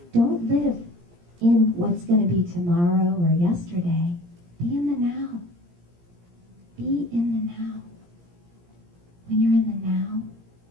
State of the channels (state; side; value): late; left; 17 ms